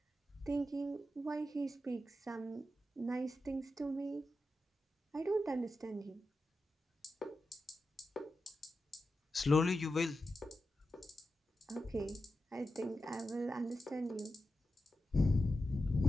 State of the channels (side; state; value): both; normal; correlation 0.90